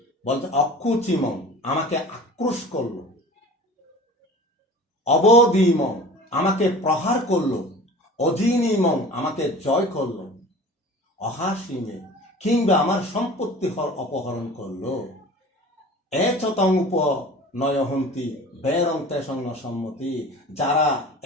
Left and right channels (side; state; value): both; normal; correlation 0.40